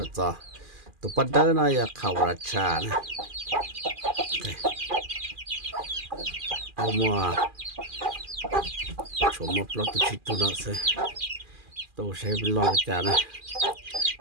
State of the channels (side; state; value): left; late; 2.4 ms